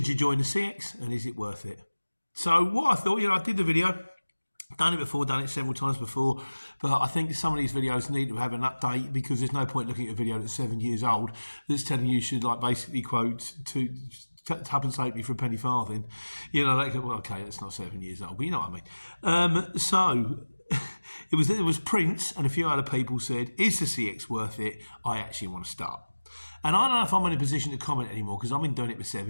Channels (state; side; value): inverted; both; correlation -1.00